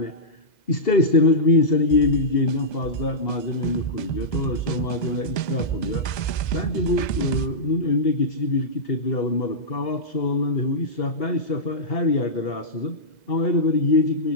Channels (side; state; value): right; late; 2.0 ms